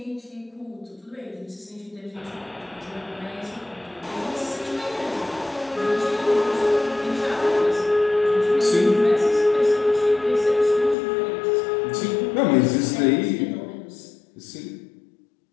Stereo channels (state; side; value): drops out; right; at 11.0 s